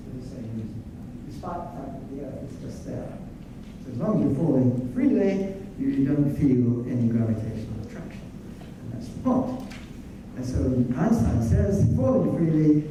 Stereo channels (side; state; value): both; identical; correlation 1.00